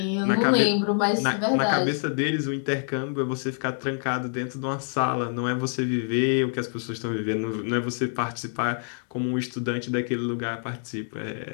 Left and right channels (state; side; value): silent; right; 61 dB below the other